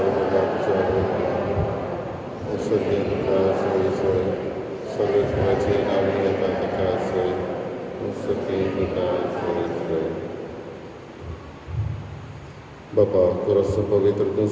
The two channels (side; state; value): both; identical; correlation 1.00